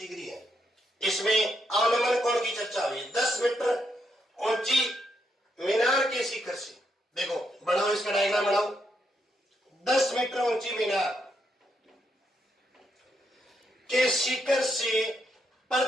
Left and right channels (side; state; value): both; normal; correlation 0.79